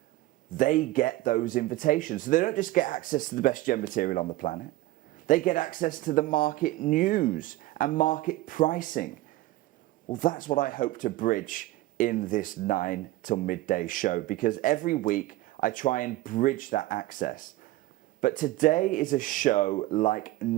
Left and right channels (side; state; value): left; quieter; 17.0 dB